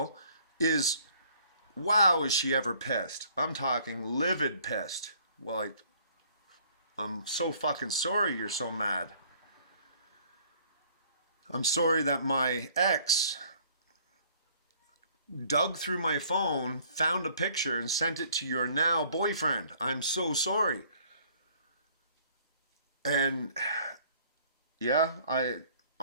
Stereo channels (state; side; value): inverted; both; correlation -0.58